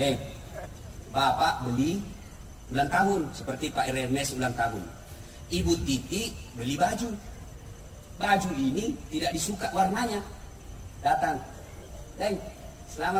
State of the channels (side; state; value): both; identical; correlation 1.00